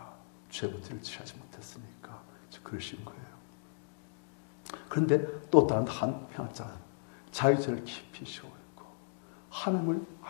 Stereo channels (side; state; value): right; silent; digital silence